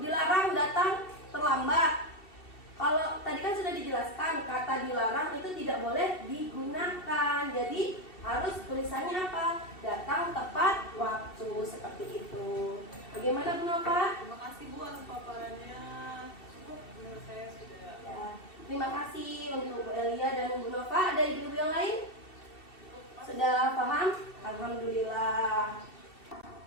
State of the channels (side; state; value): right; late; 2.7 ms